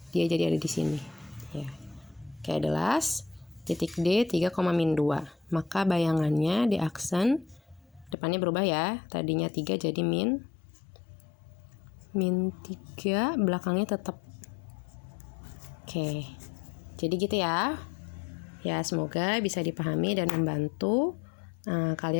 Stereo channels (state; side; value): drops out; right; at 8.2 s